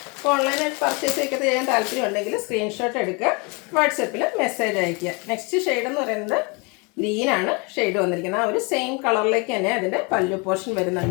അപ്പോൾ ഓൺലൈനായിട്ട് പർച്ചേസ് ഒക്കെ ചെയ്യാൻ താല്പര്യം ഉണ്ടെങ്കിൽ സ്ക്രീൻഷോട്ട് എടുക്കുക, വാട്സപ്പിൽ മെസ്സേജ് അയയ്ക്കുക. നെക്സ്റ്റ് ഷെയ്ഡ് എന്ന് പറയുന്നത് ഗ്രീനാണ് ഷെയ്ഡ് വന്നിരിക്കുന്നത്. ആ ഒരു സെയിം കളറിലേക്ക് തന്നെ അതിൻ്റെ പല്ലു പോർഷൻ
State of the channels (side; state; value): right; quieter; 30.5 dB